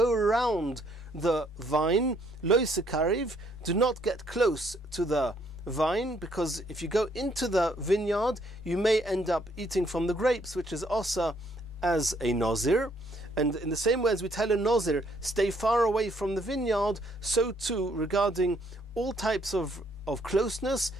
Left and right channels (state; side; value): normal; both; correlation 0.68